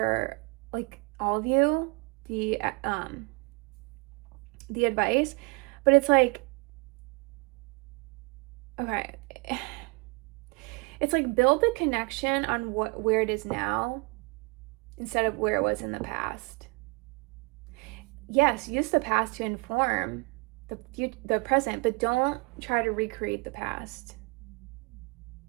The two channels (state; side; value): quieter; left; 29.2 dB